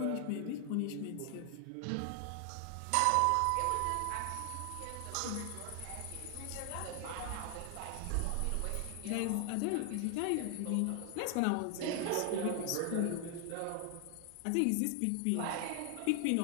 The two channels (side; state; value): both; different; correlation 0.00